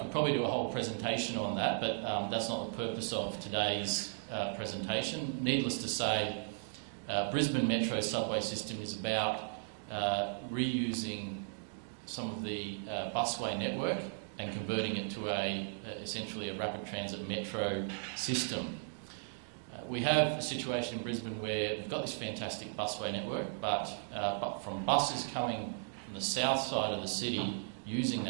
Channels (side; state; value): left; silent; digital silence